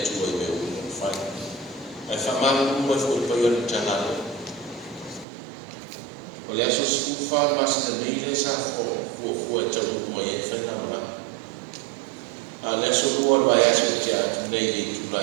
tu ai meu fai ai faman mo foi payon tanalo olha só se fa mas na meile sa fo tau mo ia fai na ma ala so o vai aso tia nei tu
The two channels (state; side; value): drops out; left; at 5.2 s